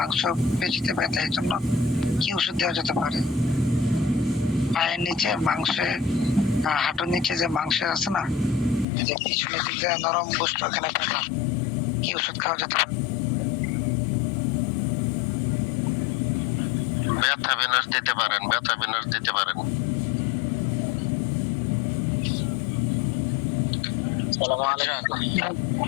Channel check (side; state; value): right; drops out; at 8.8 s